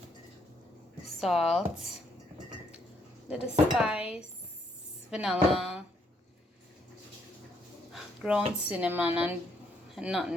salt, little spice, vanilla, ground cinnamon and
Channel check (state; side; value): normal; both; correlation 0.71